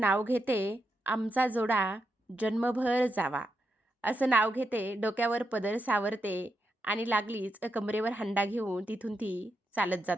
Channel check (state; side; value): normal; both; correlation 0.84